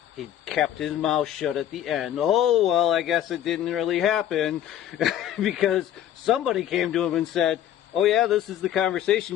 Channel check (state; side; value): quieter; right; 11.1 dB